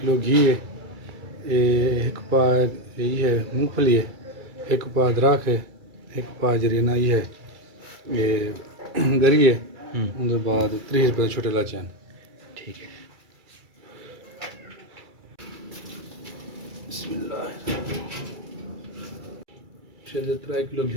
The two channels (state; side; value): late; left; 2.3 ms